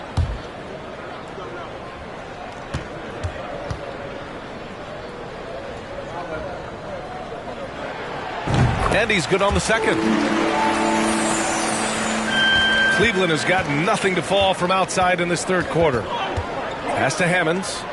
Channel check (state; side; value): identical; both; correlation 1.00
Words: And he's good on the second. Cleveland has gotten nothing to fall from outside in this third quarter. Pass to Hammonds.